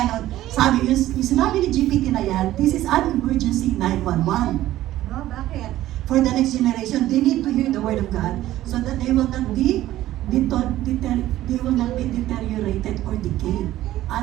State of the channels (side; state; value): left; quieter; 14.5 dB